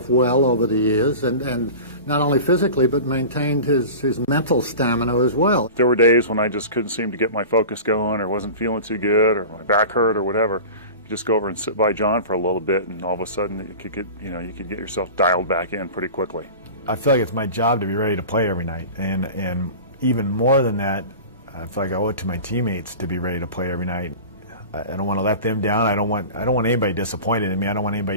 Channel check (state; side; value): inverted; both; correlation -0.35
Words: well over the years, and not only physically, but maintained his mental stamina as well. There were days when I just couldn't seem to get my focus going, or wasn't feeling too good, or my back hurt, or whatever. You just go over and sit by John for a little bit, and all of a sudden you could get yourself dialed back in pretty quickly. I feel like it's my job to be ready to play every night, and even more than that, I feel like I owe it to my teammates to be ready to play every night. I don't want to let them down. I don't want anybody disappointed in me. I don't want